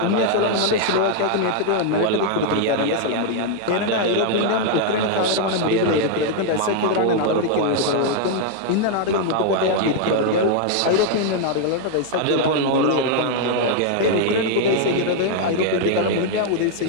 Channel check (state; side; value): different; both; correlation 0.00